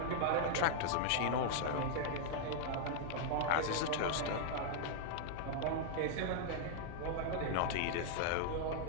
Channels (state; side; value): different; both; correlation 0.00